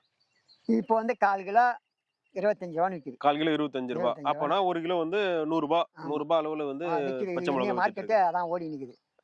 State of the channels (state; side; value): identical; both; correlation 1.00